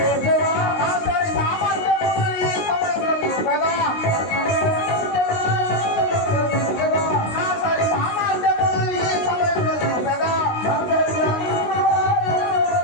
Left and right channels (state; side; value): late; right; 19 ms